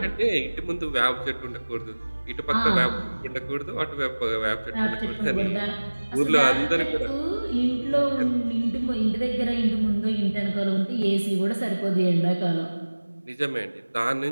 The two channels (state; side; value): inverted; both; correlation -1.00